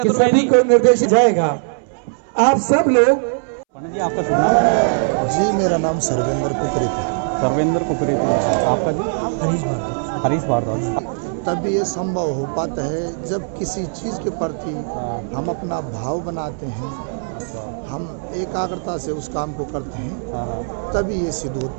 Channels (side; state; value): left; silent; 66 dB below the other